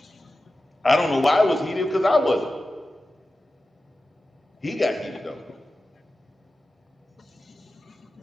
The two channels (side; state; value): both; normal; correlation 0.94